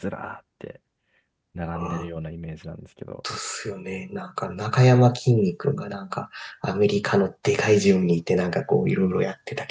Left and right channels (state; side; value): identical; both; correlation 1.00